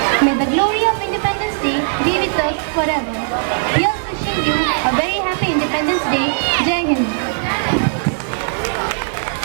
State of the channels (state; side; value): silent; left; digital silence